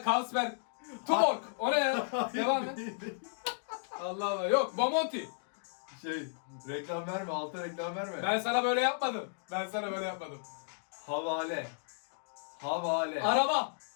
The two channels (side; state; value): right; silent; digital silence